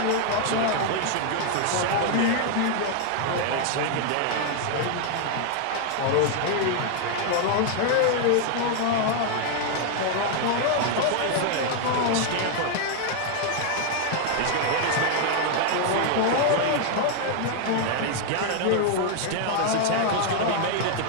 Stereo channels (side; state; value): both; different; correlation 0.00